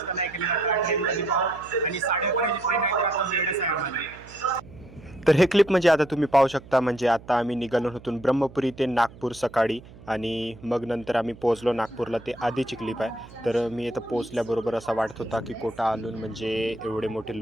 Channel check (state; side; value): noise; right; hum, 20 dB below the sound